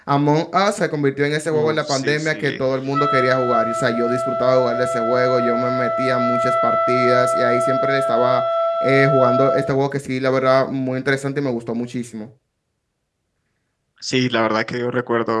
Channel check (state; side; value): identical; both; correlation 1.00